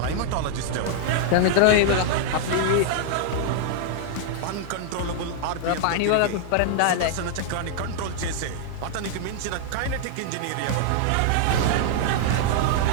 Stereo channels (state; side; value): different; both; correlation -0.01